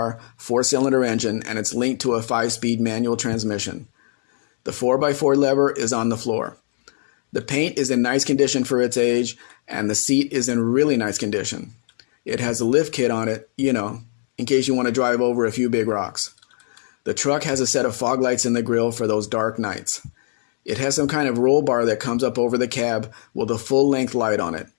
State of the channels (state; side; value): silent; right; digital silence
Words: 4-cylinder engine and it's linked to a 5-speed manual transmission. The 4x4 lever is on the floor. The paint is in nice condition for its age and the seat is in really nice condition. It has a lift kit on it, in case you want to drive over a few big rocks. The truck has a set of fog lights in the grille for those dark nights. It has some kind of roll bar that comes up over the cab with a full-length light on it.